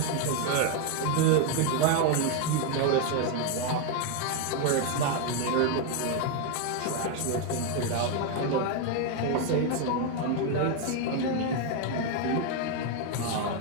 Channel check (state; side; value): different; both; correlation 0.01